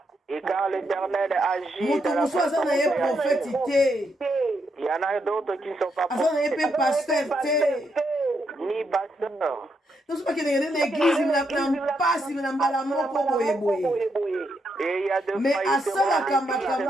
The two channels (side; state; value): both; normal; correlation 0.79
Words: et quand l'Éternel agit dans la façon il y en a d'autres qui ne sont pas prophètes, ni pasteurs. Et il y a de mais